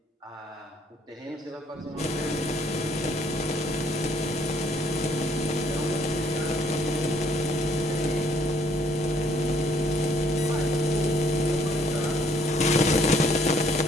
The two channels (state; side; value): normal; both; correlation 0.65